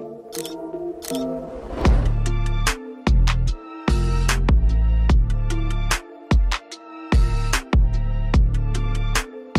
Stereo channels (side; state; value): both; identical; correlation 1.00